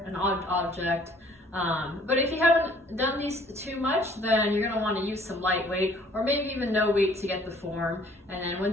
an odd object. But if you haven't done these too much, then you're gonna wanna use some light weight or maybe even no weight to get the form. And then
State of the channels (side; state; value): both; normal; correlation 0.58